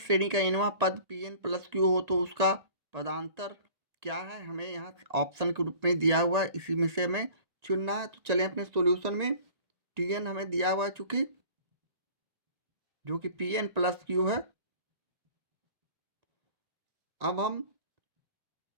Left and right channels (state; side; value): late; left; 1.8 ms